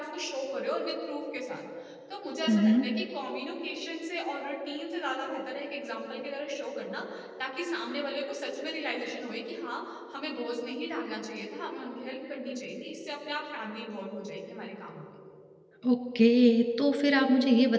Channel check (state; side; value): identical; both; correlation 1.00